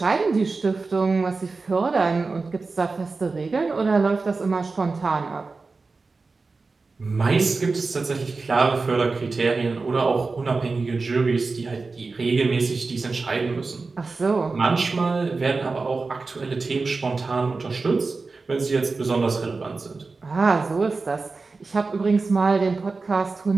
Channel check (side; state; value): left; quieter; 4.0 dB